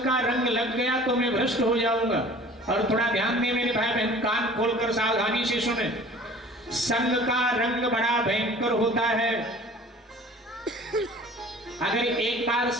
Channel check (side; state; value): both; normal; correlation 0.47